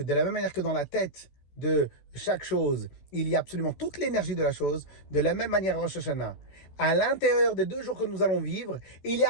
de la même manière que dans la tête de chaque chose, il y a absolument toute l'énergie de la chose, de la même manière Rosh Hashanah. À l'intérieur des 2 jours que nous allons vivre, il y a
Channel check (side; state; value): right; late; 14 ms